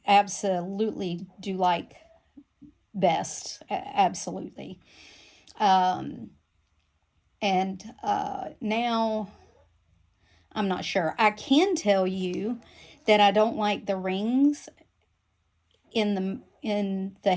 absolutely do like best. Absolutely. And now I'm not sure. I can tell you that I don't like the rings in the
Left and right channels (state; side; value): identical; both; correlation 1.00